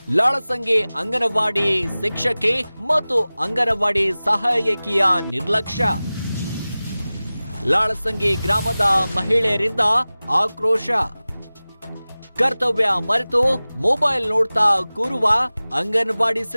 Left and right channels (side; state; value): both; inverted; correlation -0.98